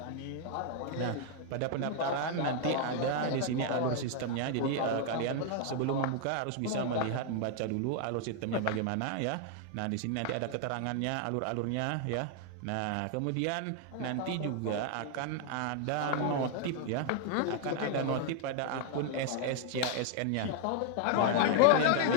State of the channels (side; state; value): both; different; correlation 0.00